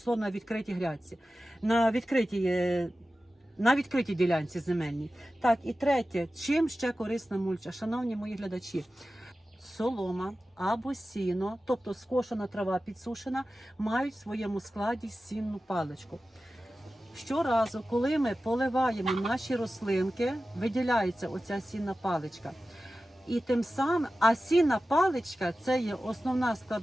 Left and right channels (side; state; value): both; normal; correlation 0.95